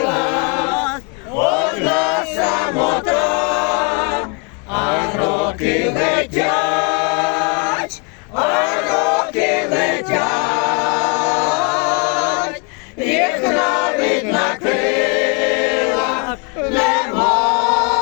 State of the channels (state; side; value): quieter; right; 34.7 dB